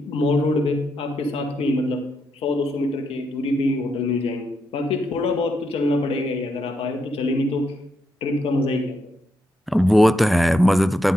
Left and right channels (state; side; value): normal; both; correlation 0.81